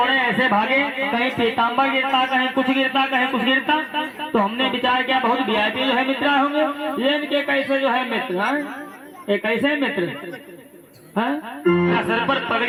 ऐसे भागे कहीं पीताम्बर गिरता कहीं कुछ गिरता कहीं कुछ गिरता तो हमने विचार किया बहुत वीआईपी जो है मित्र होंगे ये इनके कैसे जो है मित्र ये कैसे मित्र न सर पर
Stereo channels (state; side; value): identical; both; correlation 1.00